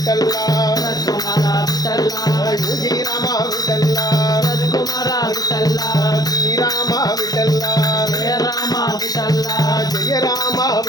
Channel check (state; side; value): late; right; 0.19 ms